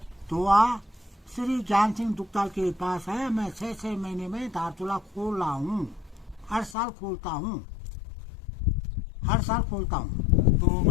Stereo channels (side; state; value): right; drops out; at 6.8 s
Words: दुआ श्री ज्ञान सिंह दुग्ताल के पास है। मैं 6 महीने में धारचूला खोल रहा हूँ, हर साल खोलता हूँ। तो